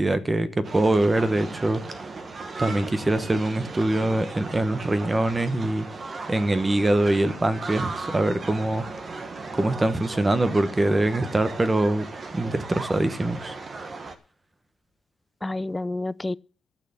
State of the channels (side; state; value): both; normal; correlation 0.95